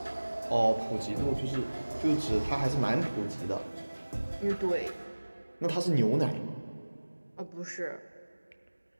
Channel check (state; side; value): inverted; both; correlation -1.00